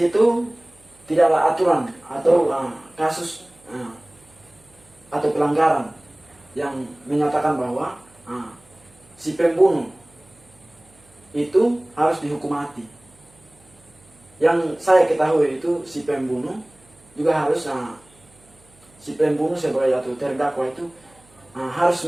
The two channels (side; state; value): right; noise; hum, 29 dB below the sound